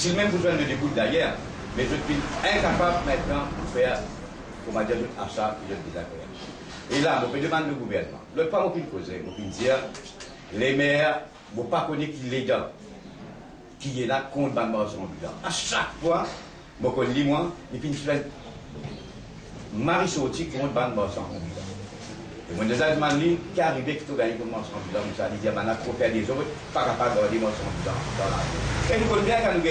même pour joindre le début d'ailleurs, mais je suis incapable maintenant de faire, comment dire, un achat et de désaccord. Et là, je demande au gouvernement, le pas aucune cause, je peux dire, les maires, je ne pas connaître qui est légal, qui est là contre le marché en bilan. À chaque fois, je connais moi, et puis je fais Marie sorti contre le marché en bilan. Et moi, des Allemands qui arrivent qui ont gagné comme marché en bilan, ça dit, on a trop fait des autres, pas capable de garder marché en bilan dans la rue. Et nous connaissons bien quand nous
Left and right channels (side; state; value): both; identical; correlation 1.00